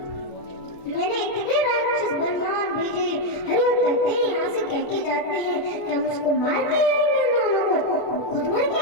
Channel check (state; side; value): late; right; 29 ms